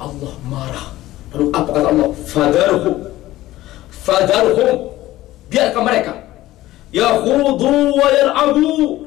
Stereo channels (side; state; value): right; quieter; 16.1 dB